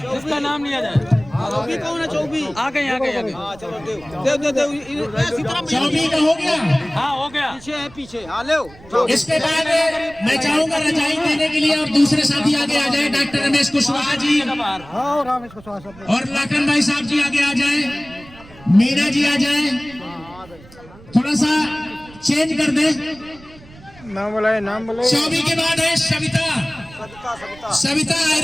जिसका नाम लिया जाए। चौबी कौन है? चौबी आ गए आ गए आ गए। चलो चौबी का हो गया। हाँ हो गया। पीछे है पीछे। हाँ ले इसके बाद मैं चाहूंगा रजाई देने के लिए और दूसरे साथी आगे आ जाए। डॉक्टर रमेश कुशवाहा जी और लाखन भाई साहब जी आगे आ जाए। मीना जी आ जाए। थोड़ा सा चेंज कर दे। नाम बुलाए नाम बुलाए। चौबी के बाद है सविता। सविता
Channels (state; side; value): noise; right; rumble, 21 dB below the sound